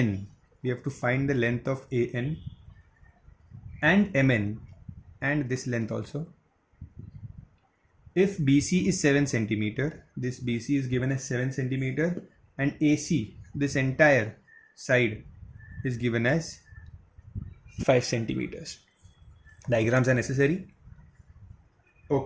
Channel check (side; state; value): both; identical; correlation 1.00